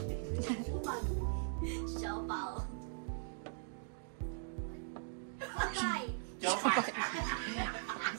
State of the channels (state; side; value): silent; left; digital silence